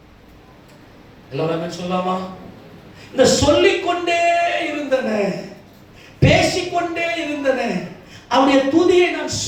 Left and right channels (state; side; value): identical; both; correlation 1.00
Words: எல்லாரும் சொல்லலாமா? இந்த சொல்லிக்கொண்டே இருந்தன, பேசிக்கொண்டே இருந்தன. அவருடைய துதியை நான்